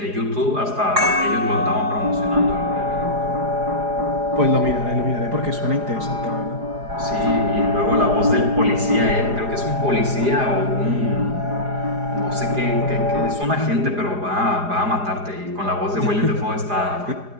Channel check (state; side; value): late; left; 4.9 ms